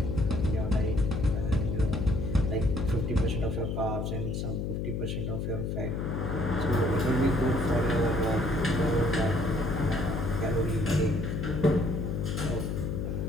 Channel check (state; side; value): noise; left; hum, 2 dB below the sound